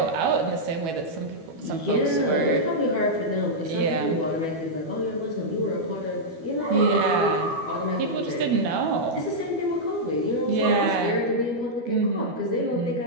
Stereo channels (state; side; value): late; left; 12 ms